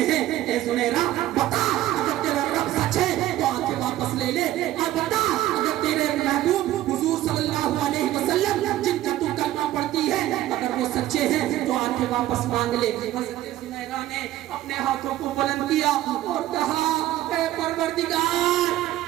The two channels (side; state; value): left; quieter; 14.2 dB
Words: हैं, ए जुनैरा बता, अगर तेरा रब सच है तो आंखें वापस ले ले, और बता अगर तेरे महबूब हुजूर सल्लल्लाहु अलैहि वसल्लम जिनका तू कलमा पढ़ती है अगर वो सच्चे हैं तो आंखें वापस मांग ले। हज़रत जुनैरा ने अपने हाथों को बुलंद किया और कहा, ए परवरदिगार,